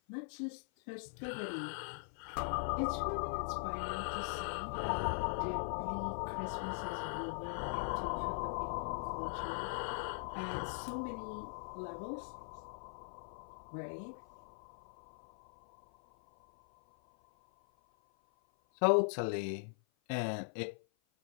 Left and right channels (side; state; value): right; silent; 51 dB below the other